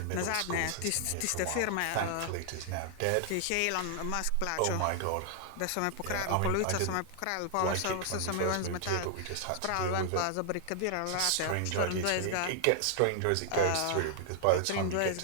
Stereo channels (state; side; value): different; both; correlation 0.00